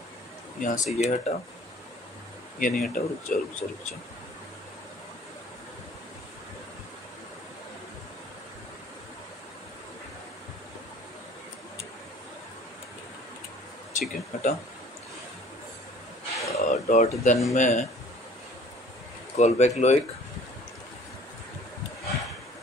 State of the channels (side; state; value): both; normal; correlation 0.51